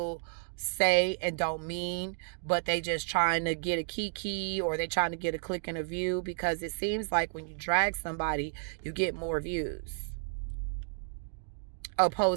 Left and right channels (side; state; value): left; silent; 56 dB below the other